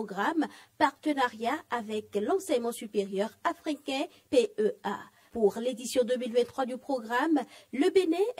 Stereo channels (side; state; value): both; identical; correlation 1.00